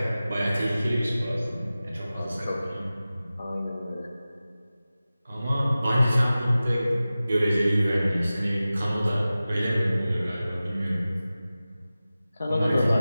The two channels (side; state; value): both; inverted; correlation -0.96